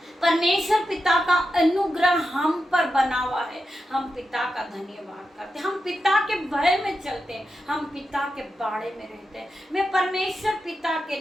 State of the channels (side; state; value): both; normal; correlation 0.88